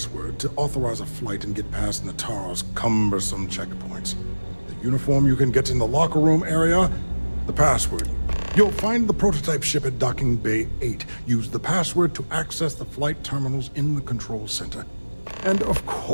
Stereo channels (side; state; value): both; inverted; correlation -1.00